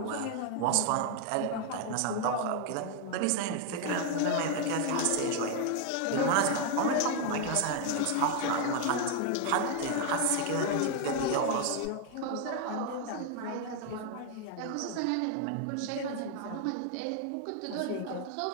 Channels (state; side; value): different; both; correlation 0.01